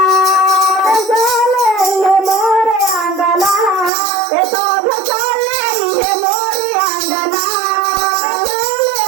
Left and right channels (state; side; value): drops out; left; at 3.9 s